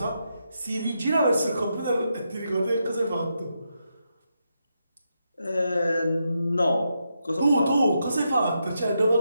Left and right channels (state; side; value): inverted; both; correlation -0.83